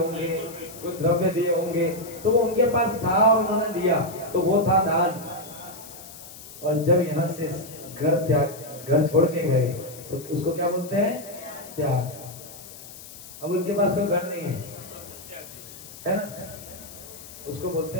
कुछ द्रव्य दिए होंगे, तो वो उनके पास था और उन्होंने दिया, तो वो था दान। और जब यहाँ से घर छोड़ के गए तो उसको क्या बोलते हैं? त्याग। अब उनके पास कोई घर नहीं है ना, उसको बोलते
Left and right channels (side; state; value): left; noise; hiss, 16 dB below the sound